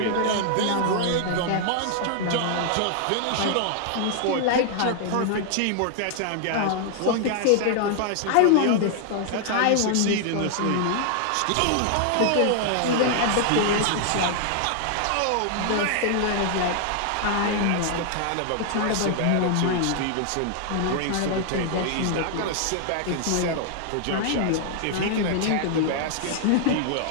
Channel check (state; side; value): different; both; correlation 0.00